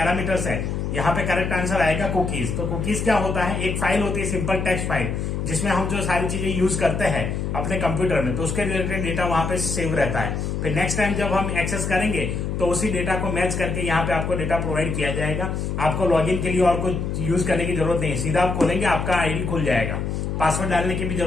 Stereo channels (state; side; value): noise; left; hum, 2 dB below the sound